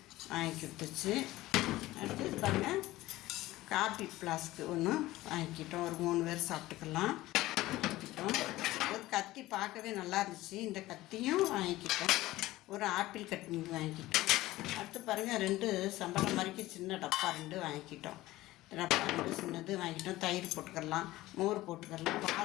வாங்கி விட்டுச்சு. அடுத்து பாருங்கள், காப்பி ஃப்ளாஸ்க்கு ஒன்று வாங்கிக்கிட்டோம். ஒரு 3 பேர் சாப்பிட்டுக்கலாம் வாங்கிக்கிட்டோம். ஒரு கத்தி பார்க்கவே நல்லா இருந்துச்சு. இந்த கத்தியும் வாங்கிக்கிட்டோம். ஒரு ஆப்பிள் கட்டி வாங்கிக்கிட்டோம். அடுத்து பாருங்கள், 2 சம்பளம் மாதிரிக்கு சின்ன டப்பா 2 வாங்கிக்கிட்டோம். டப்பா 2 சின்னது வாங்கிக்கிட்டோம். தயிர் போட்டுக்கலாம், மோர் போட்டுக்கலாம்,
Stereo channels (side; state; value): right; quieter; 17.2 dB